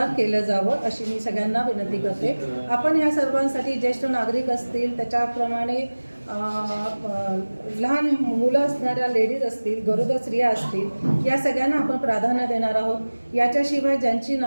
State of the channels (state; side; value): inverted; both; correlation -1.00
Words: केलं जावं अशी मी सगळ्यांना विनंती करते. आपण या सर्वांसाठी ज्येष्ठ नागरिक असतील, त्याच्याप्रमाणे लहान मुलं असणाऱ्या लेडीज असतील, गरोदर स्त्रिया असतील, या सगळ्यांना आपण प्राधान्य देणार आहोत. याच्याशिवाय ज्यांची